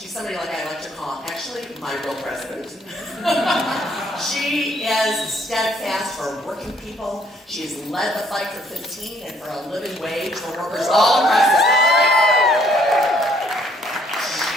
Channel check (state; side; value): normal; both; correlation 0.64